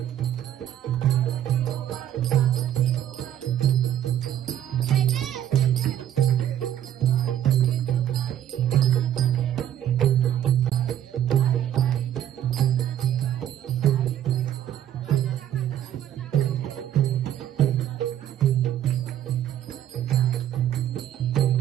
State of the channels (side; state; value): left; quieter; 11.0 dB